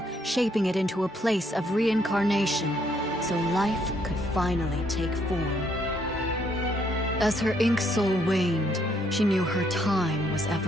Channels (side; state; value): both; normal; correlation 0.70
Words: shaping it into a place of reincarnation, so life could finally take form. As her ink soul waned, she knew her time was